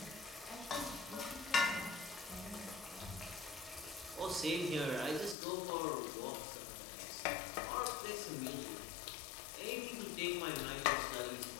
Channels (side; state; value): right; drops out; at 5.4 s